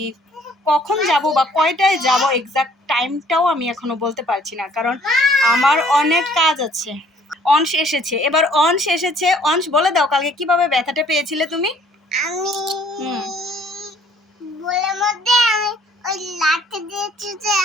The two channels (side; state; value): both; normal; correlation 0.59